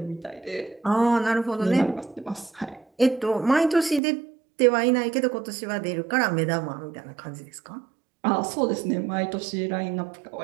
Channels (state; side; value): drops out; left; at 4.0 s